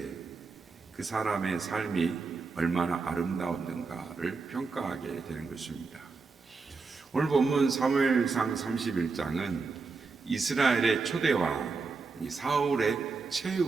그 사람의 삶이 얼마나 아름다웠는가를 평가하게 되는 것입니다. 오늘 본문 사무엘상 31장은 이스라엘의 초대왕 사울의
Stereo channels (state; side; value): quieter; left; 4.4 dB